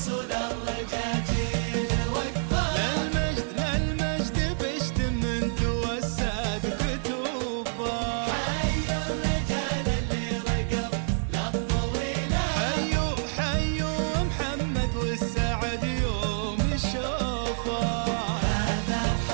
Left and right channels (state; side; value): silent; left; 60 dB below the other